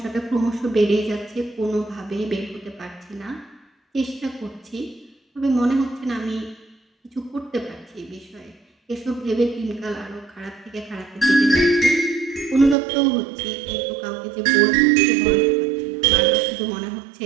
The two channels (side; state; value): left; drops out; at 12.8 s